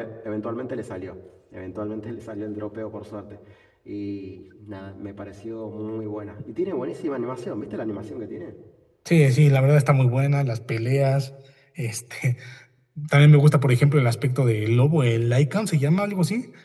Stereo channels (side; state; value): both; identical; correlation 1.00